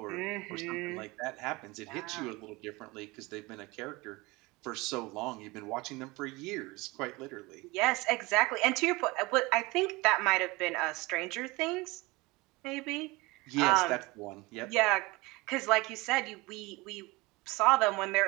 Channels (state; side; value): quieter; left; 23.2 dB